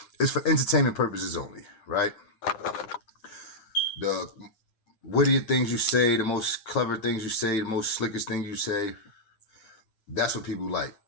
it's for entertainment purposes only, right? The wittier things you say, the most clever things you say, the most slickest things you say, that's what people like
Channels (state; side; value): late; right; 9.9 ms